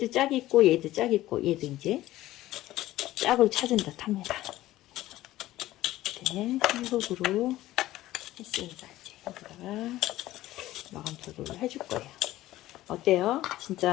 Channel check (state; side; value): quieter; right; 15.6 dB